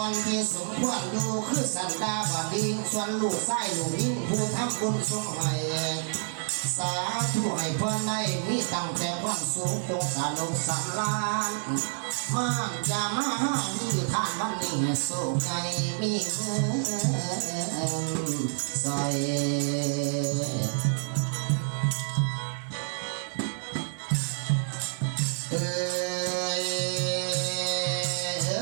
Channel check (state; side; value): silent; left; digital silence